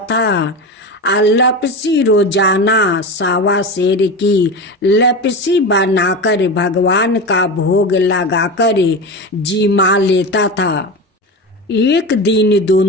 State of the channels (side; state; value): both; normal; correlation 0.24